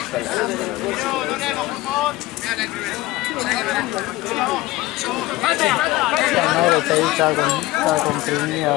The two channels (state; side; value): quieter; right; 18.4 dB